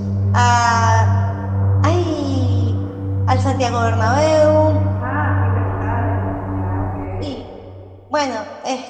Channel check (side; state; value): both; identical; correlation 1.00